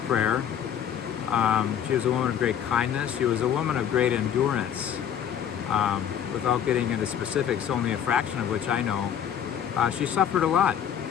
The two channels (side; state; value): right; quieter; 9.1 dB